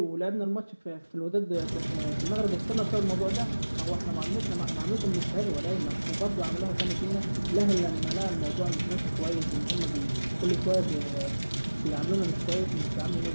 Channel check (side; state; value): both; inverted; correlation -1.00